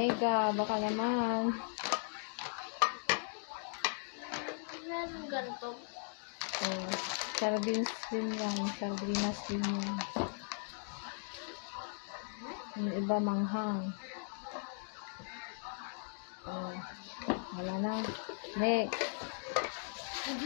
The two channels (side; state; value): right; silent; 52 dB below the other